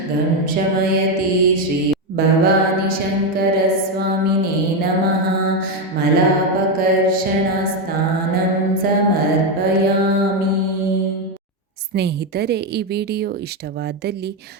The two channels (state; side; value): normal; both; correlation 0.08